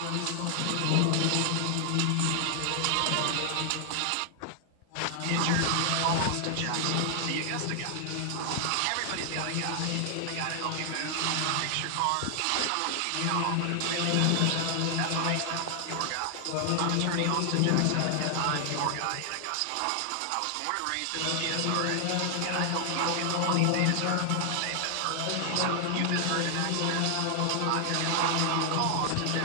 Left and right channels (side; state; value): both; different; correlation 0.00